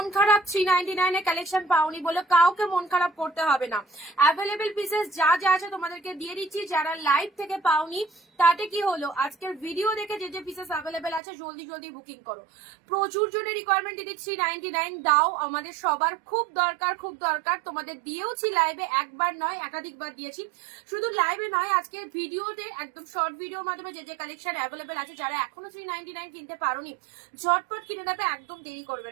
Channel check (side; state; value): left; drops out; at 11.2 s